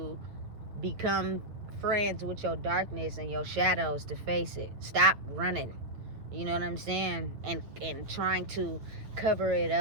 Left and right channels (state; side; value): late; left; 8.8 ms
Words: become friends with your darkness and your shadows to face it. Stop running. You know what I'm saying? And trying to cover it